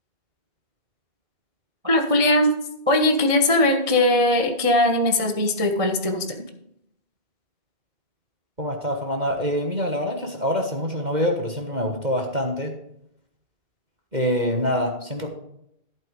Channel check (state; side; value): late; left; 1.6 ms